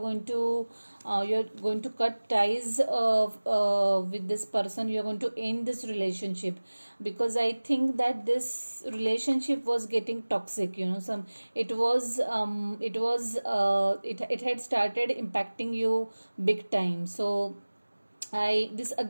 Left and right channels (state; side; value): inverted; both; correlation -1.00